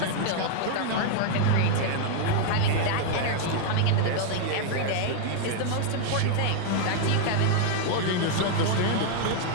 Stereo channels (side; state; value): both; different; correlation 0.00